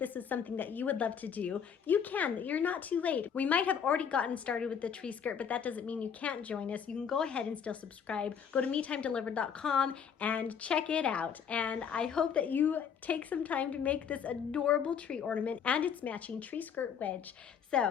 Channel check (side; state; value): right; quieter; 7.4 dB